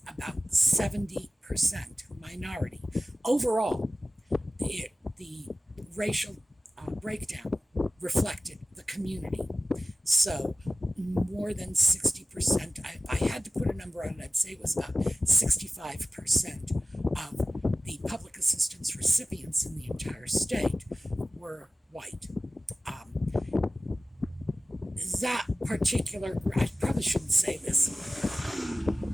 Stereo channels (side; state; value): both; normal; correlation 0.96